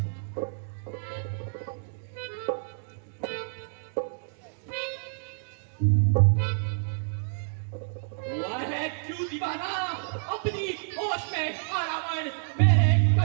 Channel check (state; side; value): silent; left; digital silence